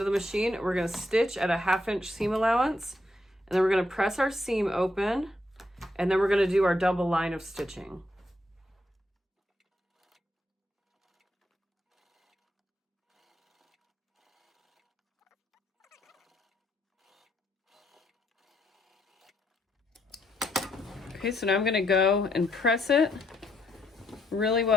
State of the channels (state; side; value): normal; both; correlation 0.76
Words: the machine. We're going to stitch at a 1/2 inch seam allowance, and then we're going to press our seam open, and then we're going to do our double line of stitching. Okay, so now I'm going to go and press it really